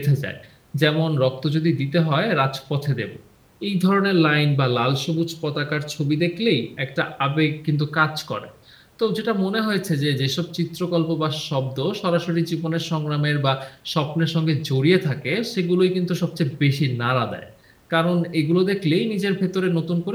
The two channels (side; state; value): both; identical; correlation 1.00